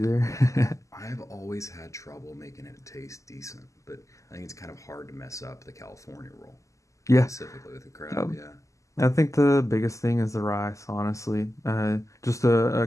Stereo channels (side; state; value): right; late; 0.16 ms